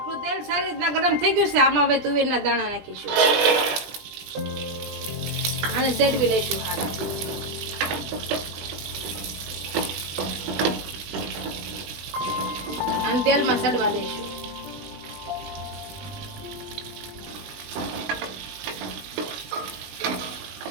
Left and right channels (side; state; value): left; late; 20 ms